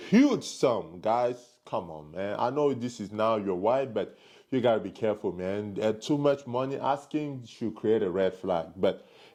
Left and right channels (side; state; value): both; identical; correlation 1.00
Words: sum. Guys, come on, man. I know this is now your wife, but you gotta be careful, man. Too much money asking should create a red flag. But